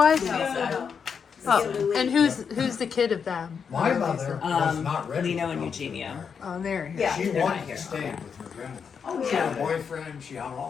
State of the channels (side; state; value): right; quieter; 6.5 dB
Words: No, no. Oh, and who's the kid of them? My mother was not ready. Lino to and come to Eugenio. America. Oh, there. Yeah. She They're wanted not here. to stay with her grandmother. Oh, She had a yeah. boyfriend, she had